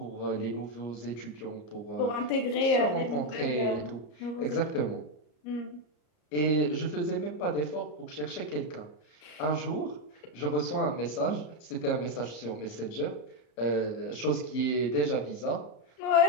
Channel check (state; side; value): late; right; 34 ms